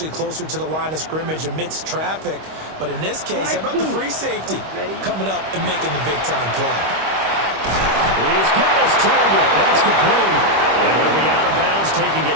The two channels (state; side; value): late; left; 26 ms